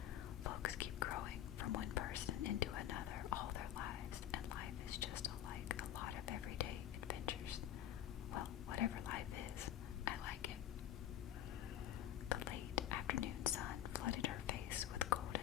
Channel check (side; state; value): right; quieter; 11.3 dB